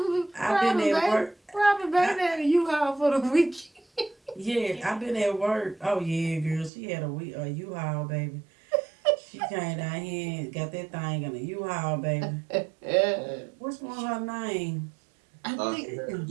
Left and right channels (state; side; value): drops out; left; at 6.7 s